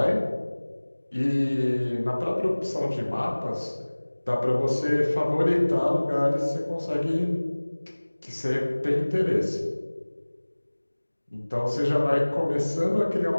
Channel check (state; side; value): inverted; both; correlation -1.00